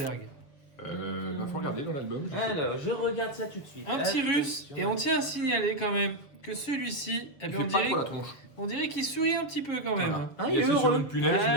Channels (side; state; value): right; late; 7.0 ms